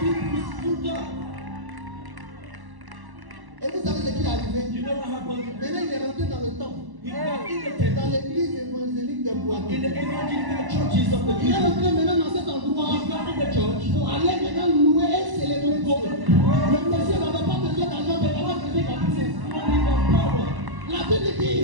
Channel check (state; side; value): late; left; 1.1 ms